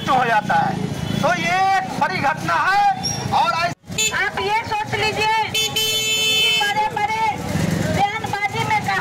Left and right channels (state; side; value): identical; both; correlation 1.00